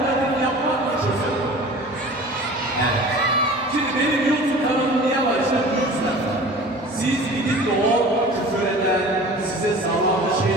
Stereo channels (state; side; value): normal; both; correlation 0.41